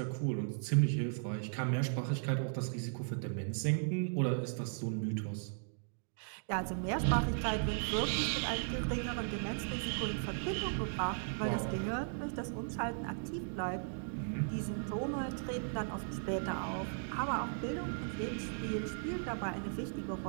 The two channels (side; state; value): left; silent; digital silence